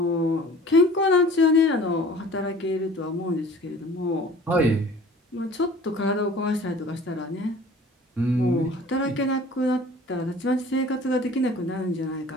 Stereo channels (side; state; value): both; normal; correlation 0.46